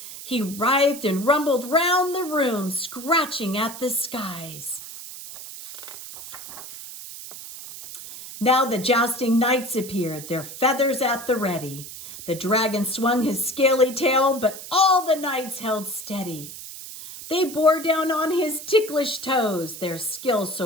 He writhed and rumbled round the room, scratching at the skies. Now the jousting knights appeared, their feathers at the ready. The dragon swung his scaly tail, but all the knights held steady. They bore down on his ticklish toes, their skill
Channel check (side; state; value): right; noise; hiss, 12 dB below the sound